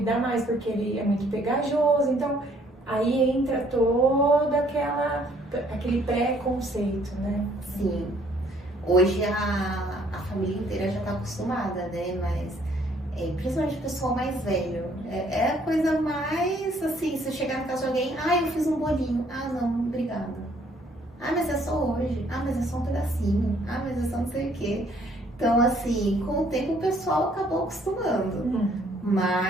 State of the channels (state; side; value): normal; both; correlation 0.63